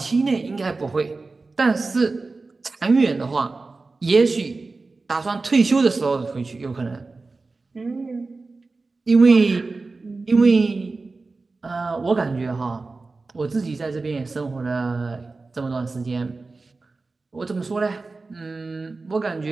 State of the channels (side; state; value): left; quieter; 3.7 dB